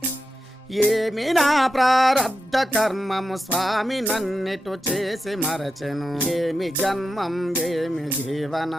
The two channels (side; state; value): both; normal; correlation 0.89